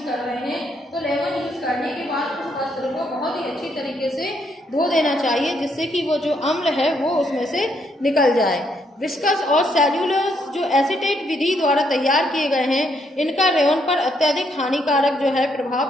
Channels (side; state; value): both; normal; correlation 0.73